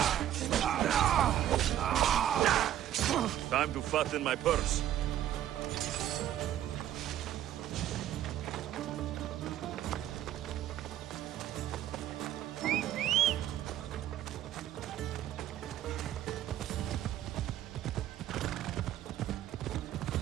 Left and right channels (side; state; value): left; quieter; 11.8 dB